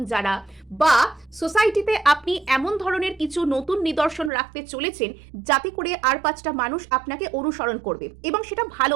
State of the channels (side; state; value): left; drops out; at 4.3 s